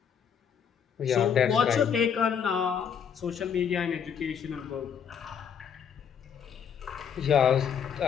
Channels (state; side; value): quieter; right; 7.6 dB